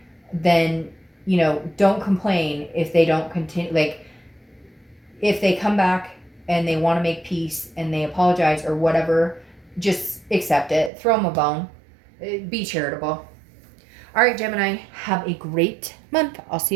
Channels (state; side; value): drops out; left; at 10.9 s